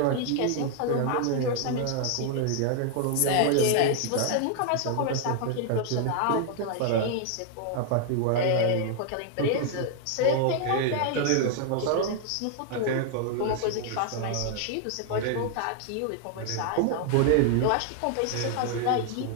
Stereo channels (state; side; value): different; both; correlation 0.00